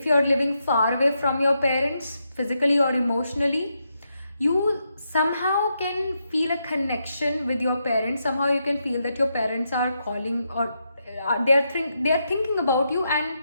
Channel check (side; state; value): both; inverted; correlation -0.83